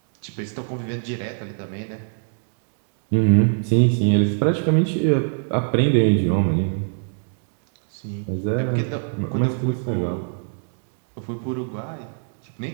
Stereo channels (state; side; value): silent; left; digital silence